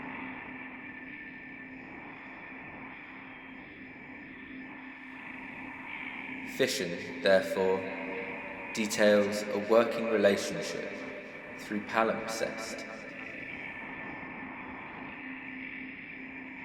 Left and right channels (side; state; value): both; identical; correlation 1.00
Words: Fission, therefore, details a working relationship through palimpsest.